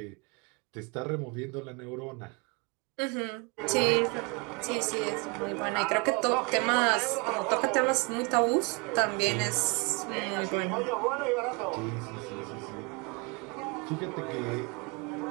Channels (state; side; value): quieter; left; 30.5 dB